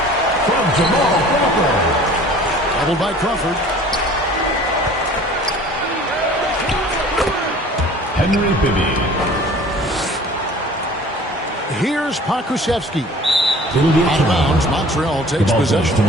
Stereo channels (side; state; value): both; normal; correlation 0.47